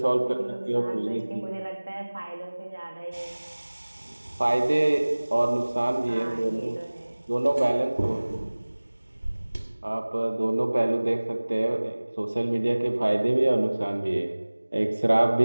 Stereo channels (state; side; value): inverted; both; correlation -1.00